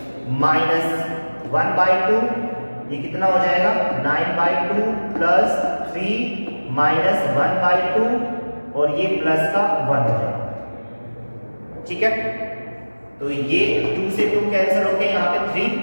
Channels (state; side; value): inverted; both; correlation -1.00